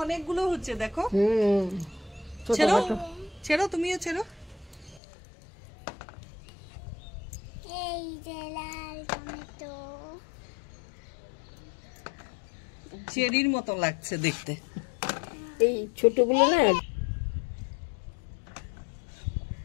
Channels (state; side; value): drops out; right; at 5.0 s